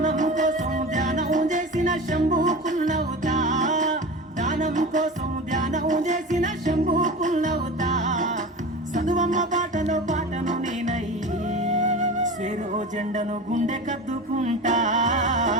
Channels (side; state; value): both; normal; correlation 0.31